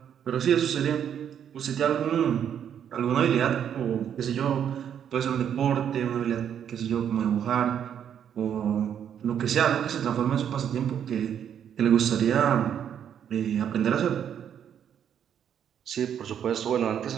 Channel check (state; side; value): quieter; left; 8.9 dB